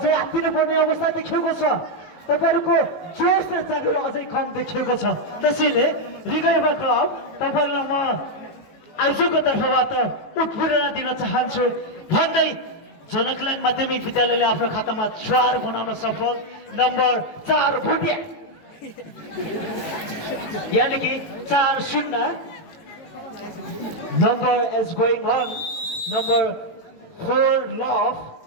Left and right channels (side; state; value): right; late; 18 ms